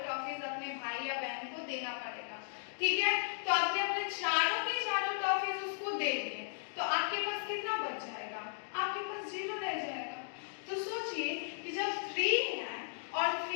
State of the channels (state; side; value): silent; right; digital silence